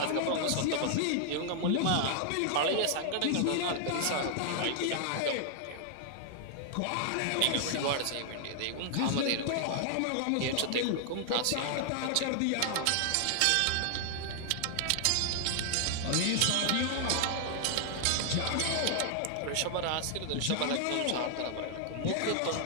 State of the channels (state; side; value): different; both; correlation 0.00